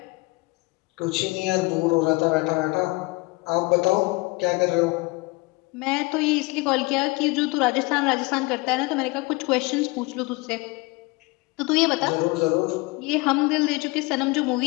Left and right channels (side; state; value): right; quieter; 24.5 dB